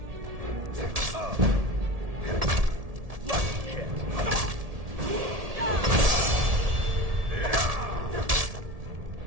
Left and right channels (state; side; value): late; left; 1.7 ms